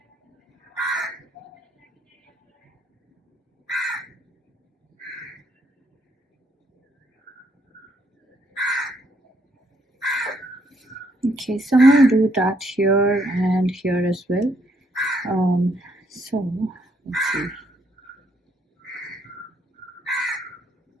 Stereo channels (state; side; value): normal; both; correlation 0.71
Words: Okay, so I'm going to do that here and here as well. So let's see.